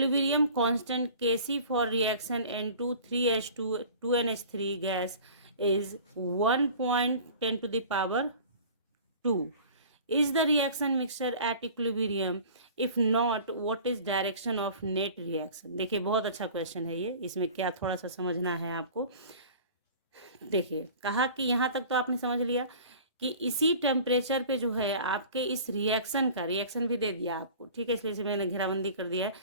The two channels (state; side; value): inverted; both; correlation -0.43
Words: constant Kc for reaction N2 3H2 2NH3 gas is 1.10 to the power 2. Is the reaction mixture at equilibrium? If not, what is direction of net reaction? देखिए बहुत अच्छा question है ये, इसमें क्या थोड़ा सा समझना है आपको। देखिए कहा कि यहाँ तक तो आपने समझ लिया कि इसी टेम्परेचर पे जो है आपके इस रिएक्शन का, रिएक्शन भी दे दिया आपको, ठीक है, इसलिए मैंने घेराबंदी कर दिया है,